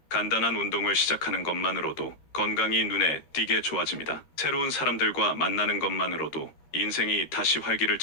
간단한 운동을 시작하는 것만으로도 건강이 눈에 띄게 좋아집니다. 새로운 사람들과 만나는 것만으로도 인생이 다시 활기를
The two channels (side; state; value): right; late; 13 ms